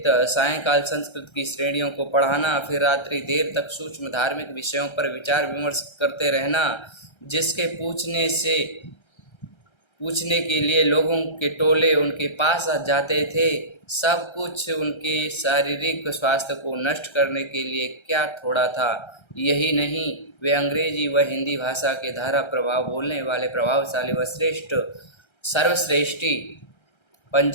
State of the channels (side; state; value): right; late; 1.3 ms